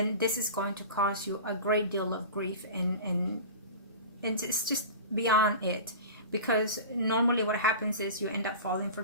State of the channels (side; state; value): both; inverted; correlation -0.33